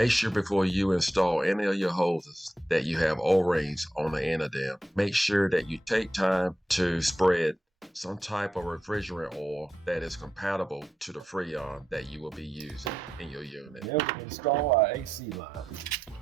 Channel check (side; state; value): both; normal; correlation 0.86